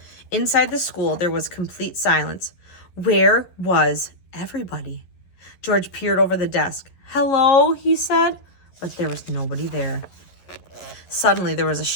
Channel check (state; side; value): late; right; 11 ms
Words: Inside the school, there was complete silence. Where was everybody? George peered over the desk. Hello, he said, but there was nobody there. Suddenly, there was a